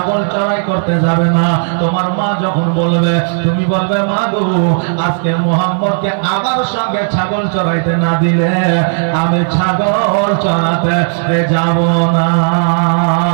চড়াই করতে যাবে না। তোমার মা যখন বলবে, তুমি বলবে, মা গো, আজকে মুহাম্মদকে আমার সঙ্গে ছাগল চড়াইতে না দিলে আমি ছাগল চড়াতে যাব না।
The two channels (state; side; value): silent; left; digital silence